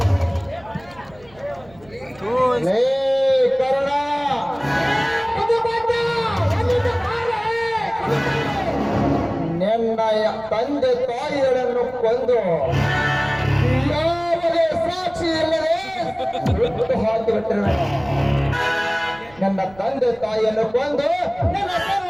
ಲೇ ಕರುಣ ನಿನ್ನ ತಂದೆ ತಾಯಿಗಳನ್ನು ಕೊಂದು ಯಾವುದೇ ಸಾಕ್ಷಿ ಇಲ್ಲದೆ ಬಿಟ್ಟು ಹಾಕಿಬಿಟ್ಟಿರುವೆ. ನನ್ನ ತಂದೆ ತಾಯಿಯನ್ನು ಕೊಂದು ನನ್ನ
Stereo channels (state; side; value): noise; right; rumble, 25 dB below the sound